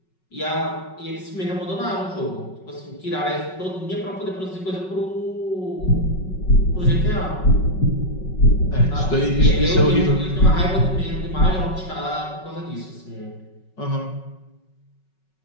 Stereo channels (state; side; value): late; right; 5.4 ms